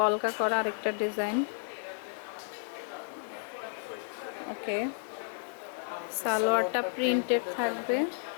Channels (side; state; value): right; silent; 56 dB below the other